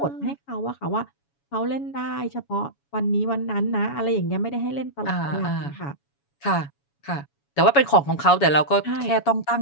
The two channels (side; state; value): right; late; 7.1 ms